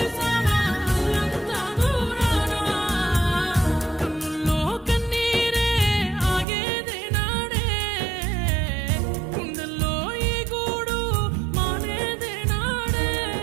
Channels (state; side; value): drops out; left; at 6.5 s